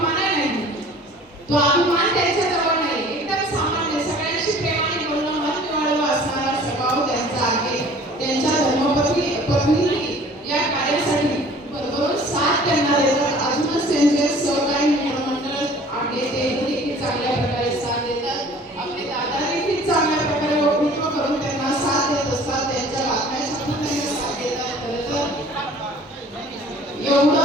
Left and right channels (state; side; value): normal; both; correlation 0.49